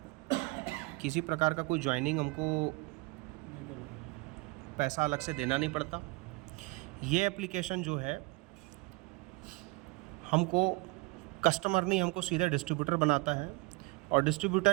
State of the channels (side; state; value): left; quieter; 25.1 dB